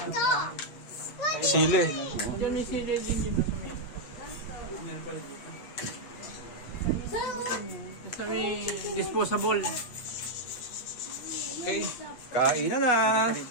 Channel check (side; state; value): right; late; 8.1 ms